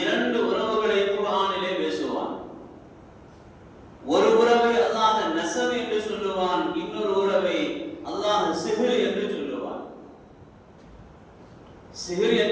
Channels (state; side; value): identical; both; correlation 1.00